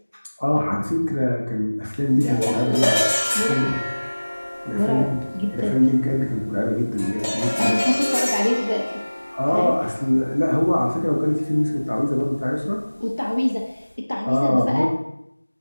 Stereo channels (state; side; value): inverted; both; correlation -1.00